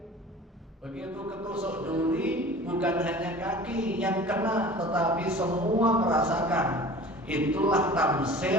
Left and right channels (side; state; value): both; normal; correlation 0.42